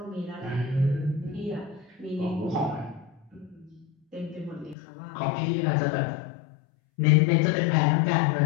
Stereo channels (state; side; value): drops out; right; at 4.8 s